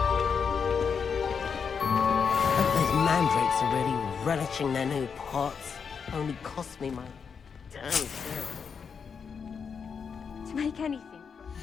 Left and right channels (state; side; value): quieter; right; 6.2 dB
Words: Those mandrakes are really relishing their new pots. Only cost me my damn self. To make anything.